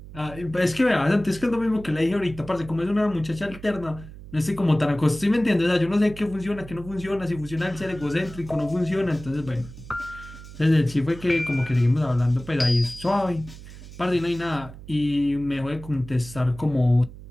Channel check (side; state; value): right; noise; hum, 16 dB below the sound